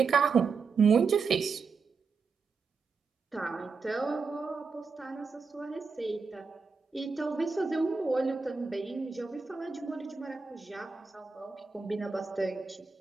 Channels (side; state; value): left; quieter; 5.0 dB